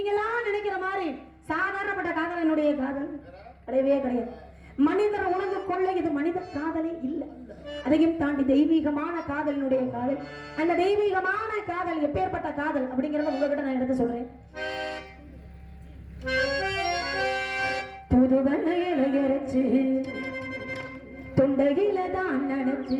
எல்லாம் நினைக்கிற மாதிரி சாதாரணப்பட்ட காதல் என்னுடைய காதல் கிடையவே கிடையாது. மனிதரை உணர்ந்து கொள்ள இது மனித காதலே இல்லை. அதையும் தாண்டி தெய்வீகமான காதலினுடைய காதல். அந்த தெய்வீகமான காதல் எப்பேற்பட்ட காதல் அப்படிங்கறத உங்ககிட்ட நான் எடுத்து சொல்றேன். புதுவனையில இறைச்சு தொண்டையில தான் நினைச்சு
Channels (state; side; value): identical; both; correlation 1.00